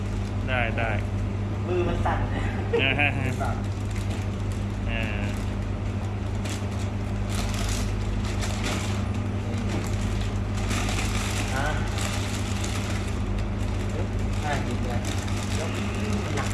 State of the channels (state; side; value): identical; both; correlation 1.00